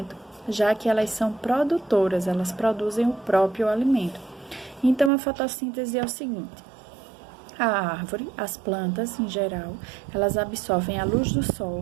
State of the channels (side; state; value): left; drops out; at 5.1 s